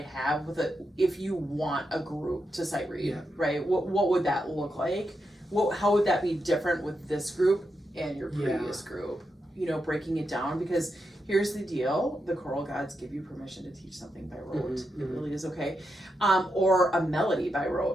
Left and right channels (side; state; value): both; normal; correlation 0.85